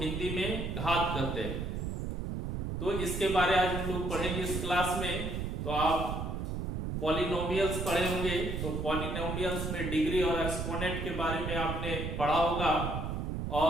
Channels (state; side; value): noise; right; rumble, 3 dB below the sound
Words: हिंदी में घात कहते हैं, तो इसके बारे आज हम लोग पढ़ेंगे इस क्लास में। तो आप पॉलिनोमियल्स पढ़े होंगे, तो पॉलिनोमियल्स में डिग्री और एक्सपोनेंट के बारे में आपने पढ़ा होगा।